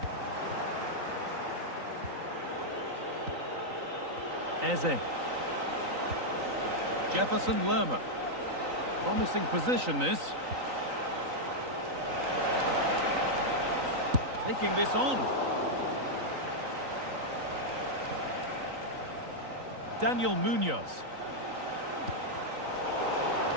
Eze. Jefferson Lerma. Promising position, this. Taking this on. Daniel Munoz.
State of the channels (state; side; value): late; left; 3.9 ms